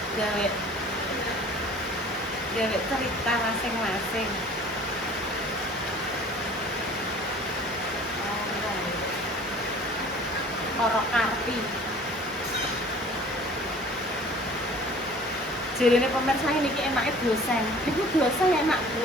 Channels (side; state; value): both; normal; correlation 0.48